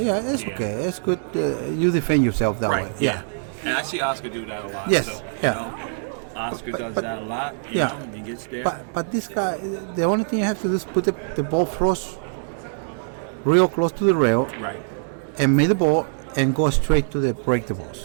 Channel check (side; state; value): left; silent; digital silence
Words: Yeah, it's Yeah. okay. It's good. You defend yourself that Right. way. Yeah. And I see Oscar do that a lot. Yes, So, yeah. Oscar does that a lot. And he gets there. But this guy, the only thing you have to do is put the ball close, real close to the rail, Right. and make the ball and go straight to the break the